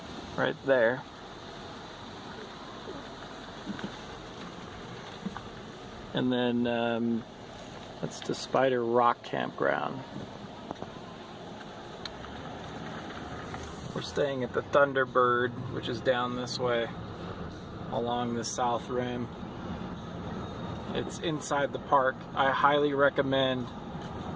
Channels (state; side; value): identical; both; correlation 1.00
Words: right there. And then that's the Spider Rock Campground. We're staying at the Thunderbird, which is down this way along the south rim. It's inside the park. I highly recommend